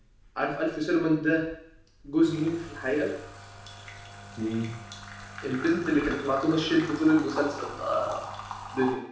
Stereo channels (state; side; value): identical; both; correlation 1.00